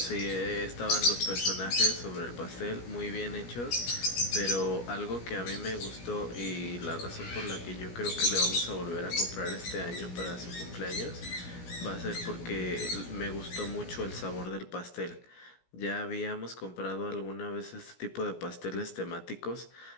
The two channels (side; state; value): right; late; 17 ms